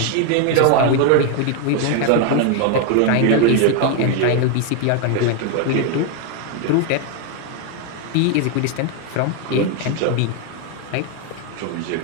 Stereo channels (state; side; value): different; both; correlation 0.01